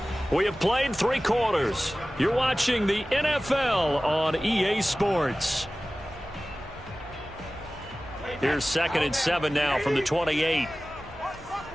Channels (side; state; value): both; normal; correlation 0.97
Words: We have played 3 quarters. You're watching the NFL on EA Sports. Here's second and 7 now from the 28.